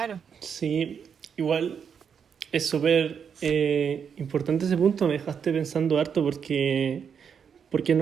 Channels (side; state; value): left; quieter; 7.1 dB